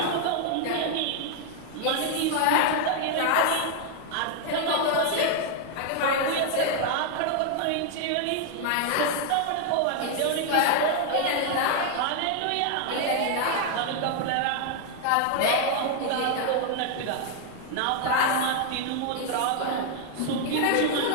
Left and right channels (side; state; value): both; different; correlation 0.00